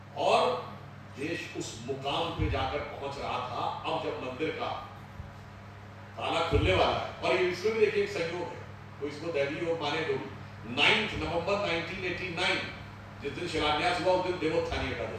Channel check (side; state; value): both; identical; correlation 1.00